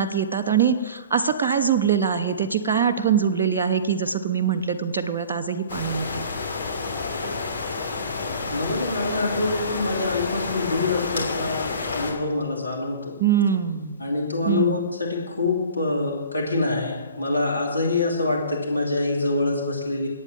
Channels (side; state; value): both; inverted; correlation -0.46